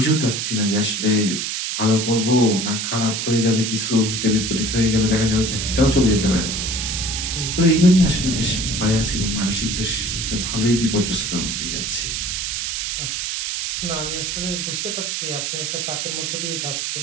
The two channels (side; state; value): right; noise; hiss, 2 dB below the sound